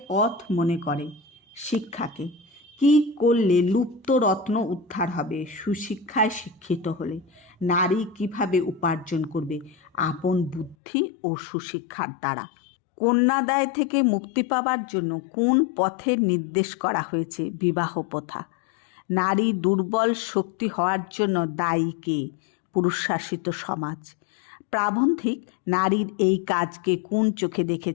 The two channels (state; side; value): drops out; right; at 10.8 s